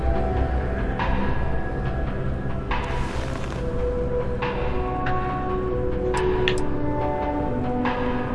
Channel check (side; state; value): both; identical; correlation 1.00